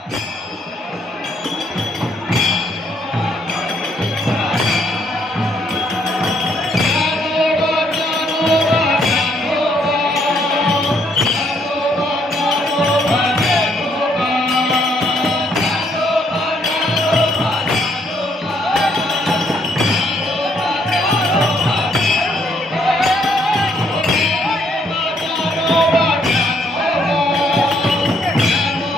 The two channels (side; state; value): both; normal; correlation 0.70